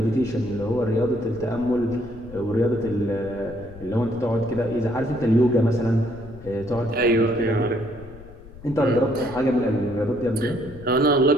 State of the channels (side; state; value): left; noise; rumble, 18 dB below the sound